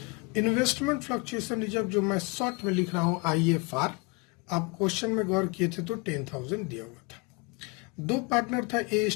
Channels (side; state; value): right; quieter; 28.9 dB